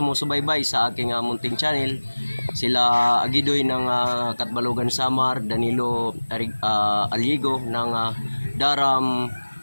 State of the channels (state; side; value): inverted; both; correlation -1.00